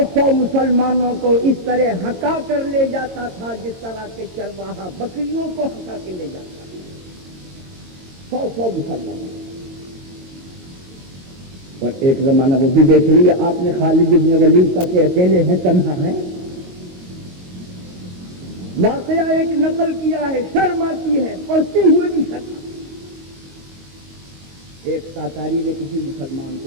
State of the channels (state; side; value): late; left; 22 ms